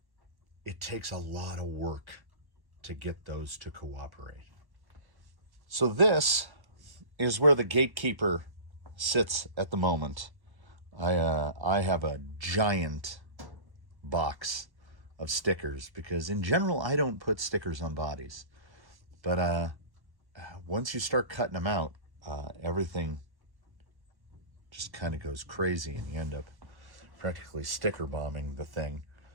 it takes a lot of work to get those to cooperate. So this is where the gatekeeper sits at the moment. I have a giant box of stickers, because in general I don't put stickers on bodies. But once you start cutting them out, everything just kind of goes crazy, and you end up practically sticker bombing the thing.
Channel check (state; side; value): late; left; 1.1 ms